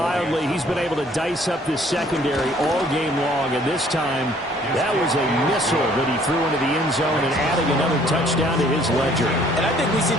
he's been able to dice up this secondary all game long, and this time that was a missile that he threw into the end zone and adding another touchdown to his ledger. And I think we see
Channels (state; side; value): normal; both; correlation 0.59